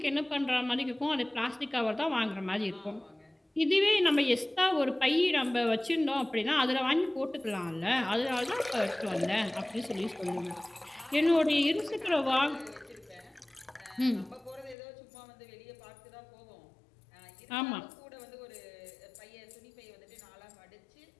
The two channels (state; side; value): drops out; right; at 14.8 s